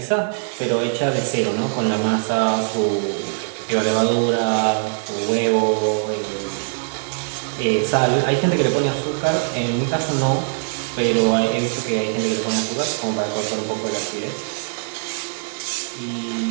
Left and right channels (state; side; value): silent; left; digital silence